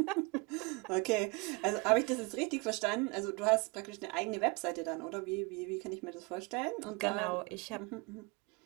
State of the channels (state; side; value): quieter; left; 27.5 dB